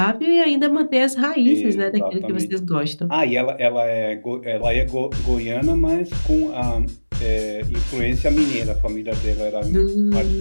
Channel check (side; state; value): both; inverted; correlation -1.00